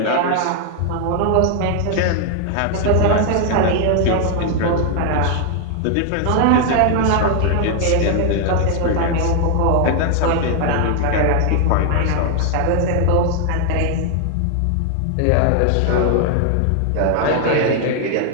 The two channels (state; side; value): different; both; correlation 0.00